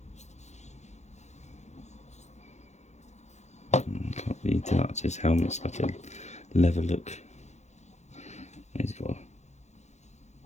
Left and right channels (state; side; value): late; right; 0.33 ms